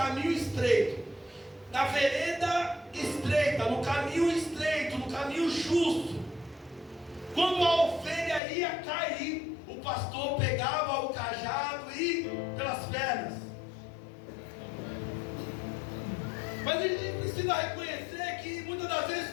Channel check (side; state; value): right; drops out; at 8.4 s